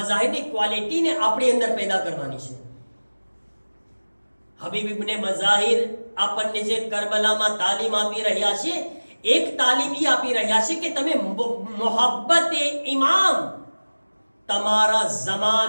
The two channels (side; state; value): both; inverted; correlation -1.00